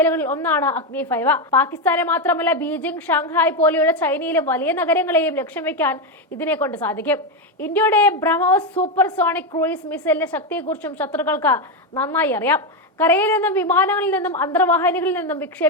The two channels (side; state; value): both; normal; correlation 0.08